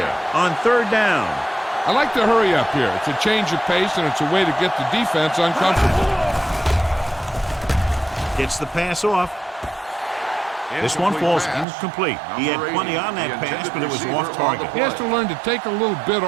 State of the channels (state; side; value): drops out; left; at 11.7 s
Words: on third down. I like to hurry up here. It's a change of pace, and it's a way to get the defense uncomfortable. Gets the pass off. This one falls incomplete. He had plenty on that pass, but it was off target. He has to learn to take a little bit